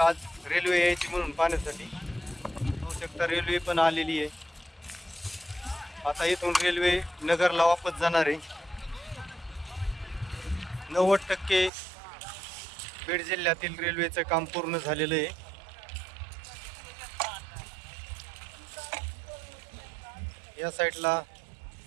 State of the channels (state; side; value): drops out; left; at 11.7 s